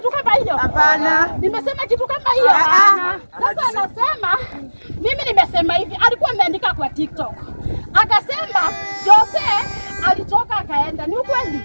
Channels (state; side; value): inverted; both; correlation -1.00